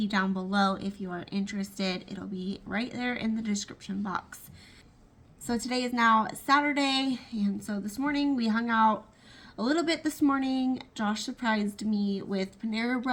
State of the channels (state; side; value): identical; both; correlation 1.00